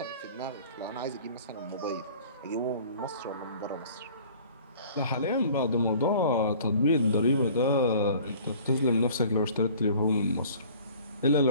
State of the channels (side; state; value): both; inverted; correlation -0.49